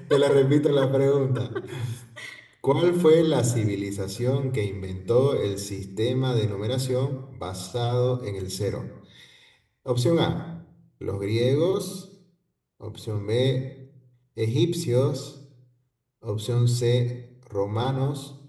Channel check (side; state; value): both; identical; correlation 1.00